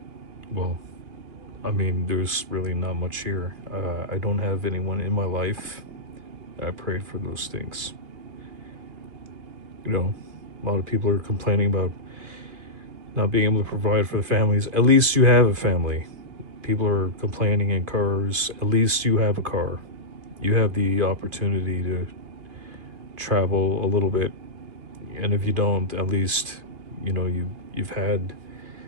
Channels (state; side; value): late; left; 2.5 ms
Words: well, I mean, there's really not much here. I don't have anyone in my life. I prayed for those things. A lot of people are complaining about not being able to provide for the families. At least you have a family. People are complaining in cars. At least you have a car. You have the opportunity to travel a little bit. And if you don't, at least, you've had